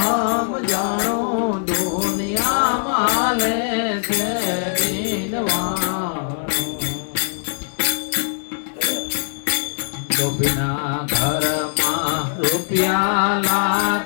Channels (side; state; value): right; silent; 65 dB below the other